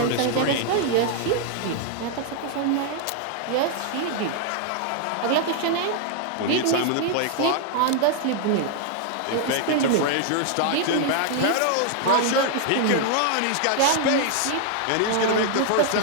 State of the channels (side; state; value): both; different; correlation 0.00